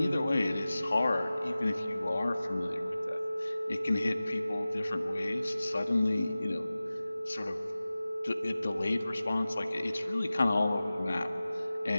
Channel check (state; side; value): inverted; both; correlation -0.97